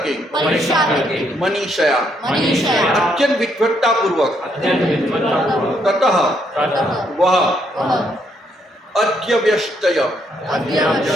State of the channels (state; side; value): normal; both; correlation 0.73